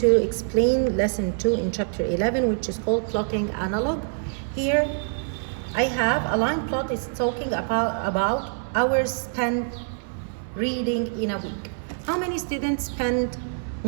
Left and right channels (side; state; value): left; silent; 58 dB below the other